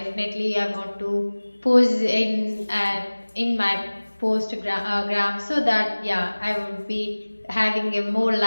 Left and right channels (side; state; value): both; inverted; correlation -1.00